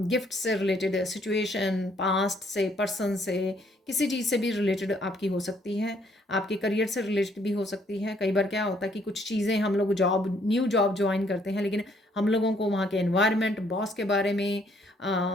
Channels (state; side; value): normal; both; correlation 0.66